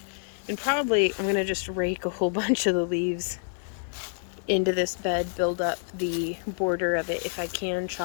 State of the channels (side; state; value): right; silent; 60 dB below the other